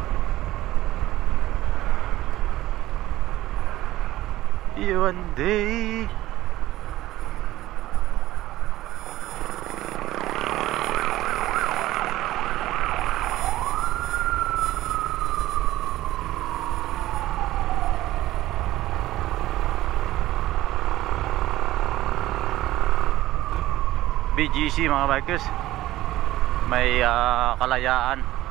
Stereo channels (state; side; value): quieter; left; 15.7 dB